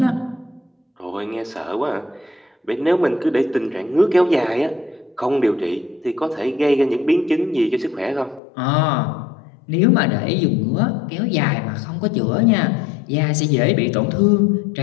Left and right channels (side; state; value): right; drops out; at 8.4 s